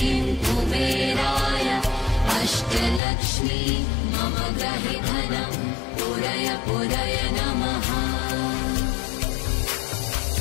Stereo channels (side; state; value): right; drops out; at 3.0 s